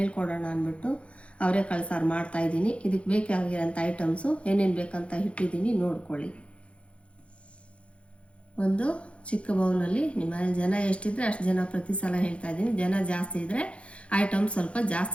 ಅಂದ್ಬಿಟ್ಟು ಅವರೆಕಾಳು ಸಾರು ಮಾಡ್ತಾಯಿದ್ದೀನಿ. ಇದಕ್ಕೆ ಬೇಕಾಗಿರೋಂಥ ಐಟಮ್ಸು ಏನೇನು ಬೇಕಂತ ಇಟ್ಟಿದ್ದೀನಿ, ನೋಡ್ಕೊಳ್ಳಿ. ಒಂದು ಚಿಕ್ಕ ಬೌಲಲ್ಲಿ ನಿಮ್ಮ ಮನೇಲಿ ಜನ ಎಷ್ಟಿದ್ರೆ ಅಷ್ಟು ಜನ ಪ್ರತಿ ಸಲ ಹೇಳ್ತಾ ಇದ್ದೀನಿ. ಜನ ಜಾಸ್ತಿ ಇದ್ದರೆ ಐಟಮ್ ಸ್ವಲ್ಪ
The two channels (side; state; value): right; late; 0.061 ms